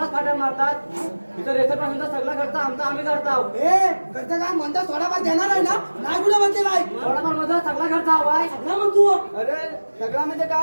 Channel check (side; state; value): both; inverted; correlation -1.00